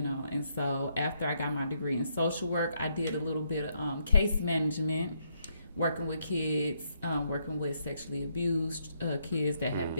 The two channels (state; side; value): inverted; both; correlation -0.75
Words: know. And so after I got my degree in social work, I did a little bit of case management, working with kids, working with sexually abused kids that have